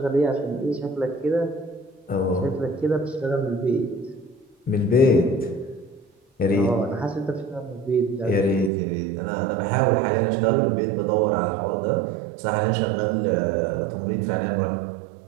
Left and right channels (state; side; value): drops out; left; at 8.7 s